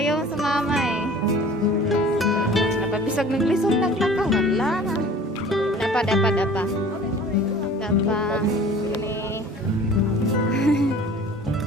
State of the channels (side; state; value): both; normal; correlation 0.46